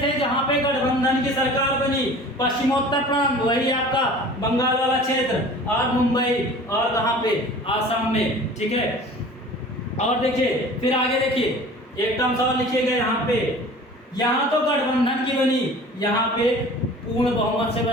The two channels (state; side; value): normal; both; correlation 0.43